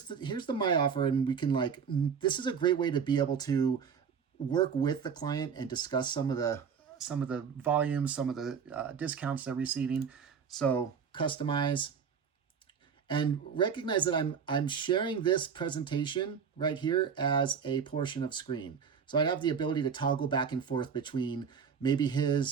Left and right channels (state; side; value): quieter; left; 6.7 dB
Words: the My Offer, and we can this is a great way to be able to work with the client and discuss some of the volumes, some of the discounts they're receiving. So customize. And recognize that I'm sharing this presentation right here as a portion of screen. So I have the ability to toggle back and forth between maybe